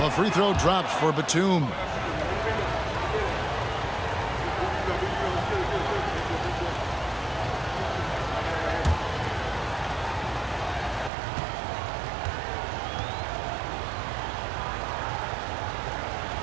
free throw drops for Batum.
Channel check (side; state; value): left; drops out; at 11.1 s